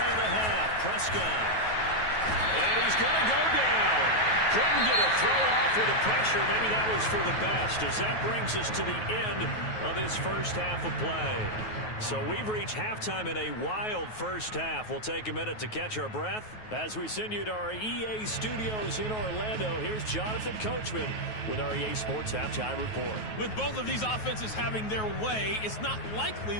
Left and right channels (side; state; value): right; late; 9.3 ms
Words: of the half. Prescott. And he's going to go down. Couldn't get a throw off with the pressure. Maybe that was for the best, as that brings us to the end of this first half of play. So we've reached halftime in a wild first half. We'll take a minute to catch our breath as we send you to our EA studios in Orlando. Here's Jonathan Coachman with our EA Sports Halftime Report. With both of these offenses having their way, it's not likely